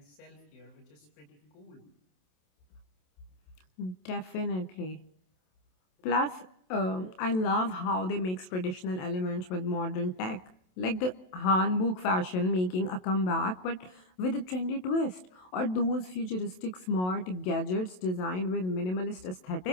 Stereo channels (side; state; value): right; late; 27 ms